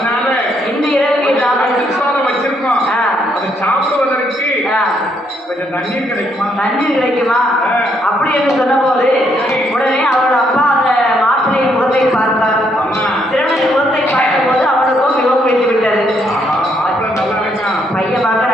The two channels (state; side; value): normal; both; correlation 0.73